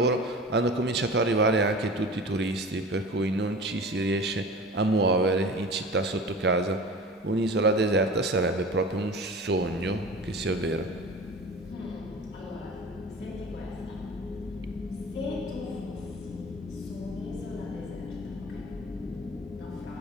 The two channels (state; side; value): normal; both; correlation 0.37